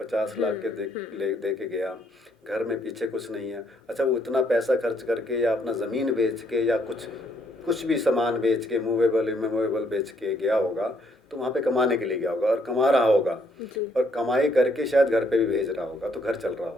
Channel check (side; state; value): both; normal; correlation 0.69